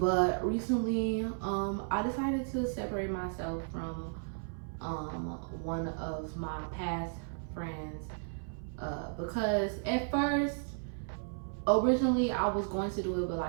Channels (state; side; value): silent; left; 55 dB below the other